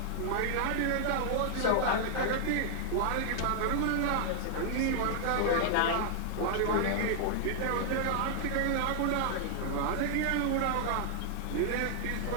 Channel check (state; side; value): different; both; correlation -0.01